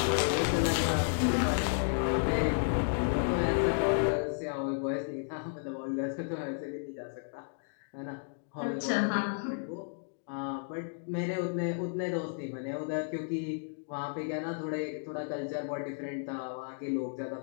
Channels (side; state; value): right; silent; digital silence